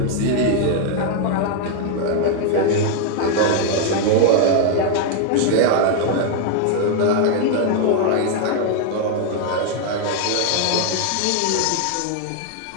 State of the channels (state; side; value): different; both; correlation 0.00